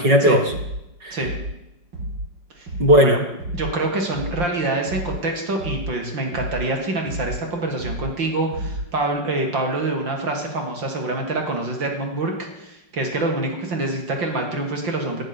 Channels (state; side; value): late; left; 5.3 ms